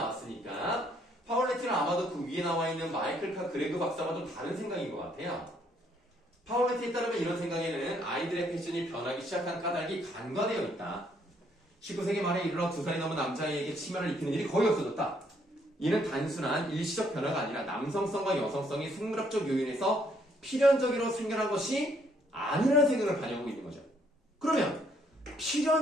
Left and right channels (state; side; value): normal; both; correlation 0.68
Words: 파울레티는 아마도 그 위에 나와 있는 마이클 카 그레그 박사와 좀 다른 생각인 것 같아요. 파울레티에 따르면 이런 생각에는 아이들의 패션이 변하기 시작한 까닭이 간과되어 있다. 19세기 말에 이르러 2살이 넘은 남자아이에게 치마를 입히는 일이 거의 없어졌다. 이는 단순한 일시적 변화가 아니라 남성성과 여성성이 생물학적 요인에서 필연적으로 생겨난 것이 아니라는 생각을 반영하고 있는 거죠. 그러면